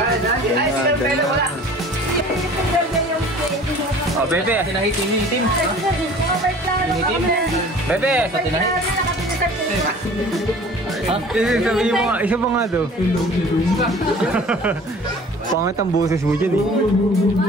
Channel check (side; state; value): both; normal; correlation 0.46